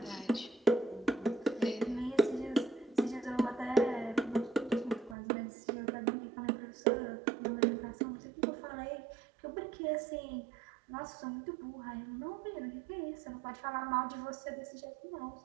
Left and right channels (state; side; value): drops out; left; at 5.2 s